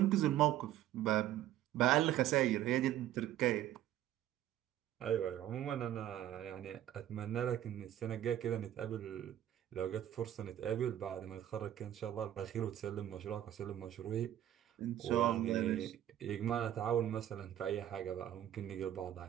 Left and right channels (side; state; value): left; quieter; 12.1 dB